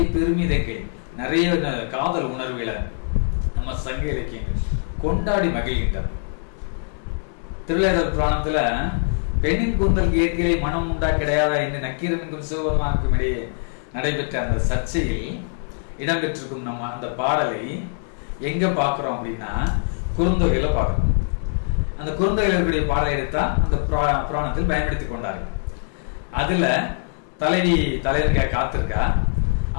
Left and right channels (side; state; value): right; silent; digital silence